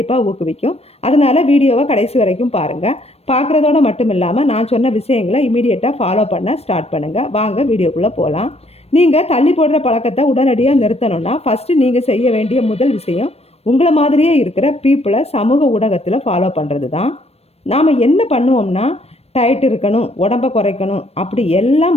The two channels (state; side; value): late; right; 0.30 ms